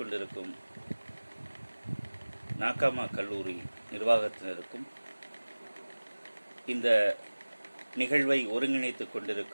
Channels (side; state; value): both; inverted; correlation -1.00